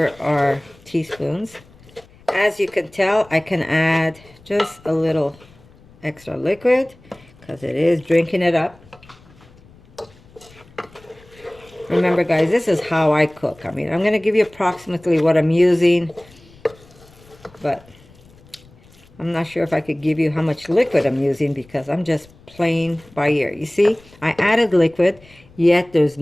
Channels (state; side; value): noise; left; rumble, 26 dB below the sound